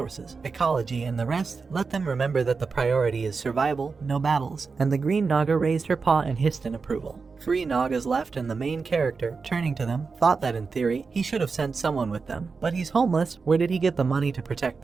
ecology, and the rest. Let them remember that the priority is survival, no battles. And the green Naga raised her paw and hissed in approval. 3 Nagas left, and the main character, turning to them, thought that in theory, he should have sent someone with them. But he's homeless, where did he get the money to protect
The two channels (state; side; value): quieter; left; 4.7 dB